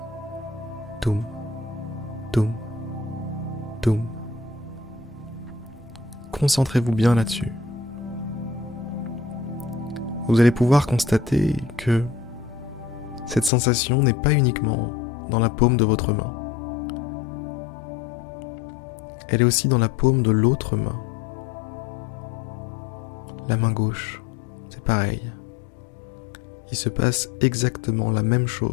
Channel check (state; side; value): drops out; right; at 13.5 s